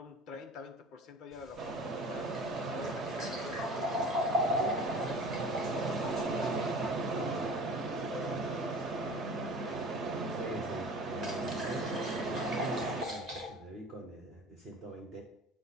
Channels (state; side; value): normal; both; correlation 0.41